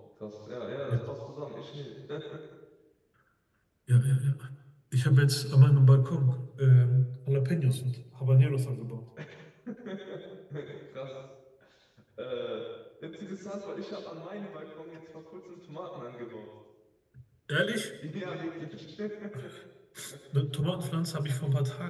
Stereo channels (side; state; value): both; identical; correlation 1.00